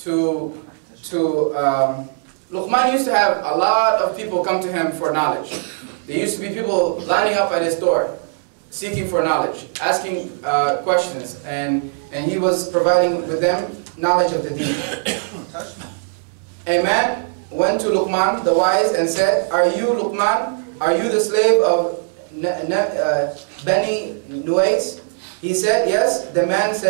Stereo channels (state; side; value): silent; left; digital silence